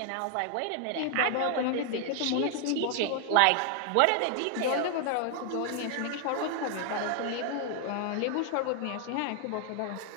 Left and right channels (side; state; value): both; different; correlation 0.00